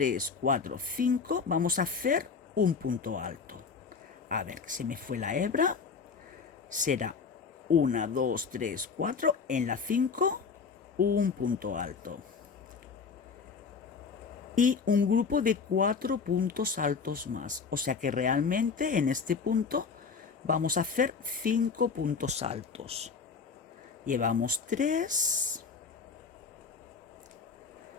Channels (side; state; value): right; quieter; 5.4 dB